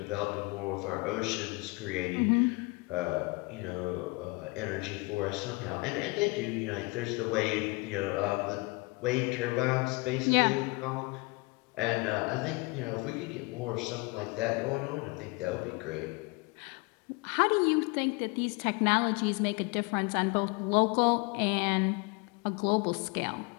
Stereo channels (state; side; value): quieter; right; 26.8 dB